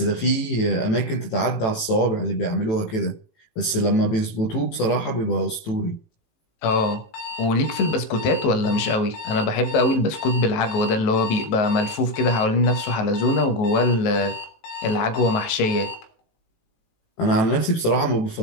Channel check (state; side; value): late; right; 18 ms